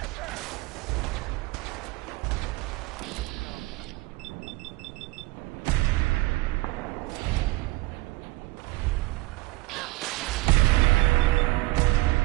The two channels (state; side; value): quieter; left; 21.1 dB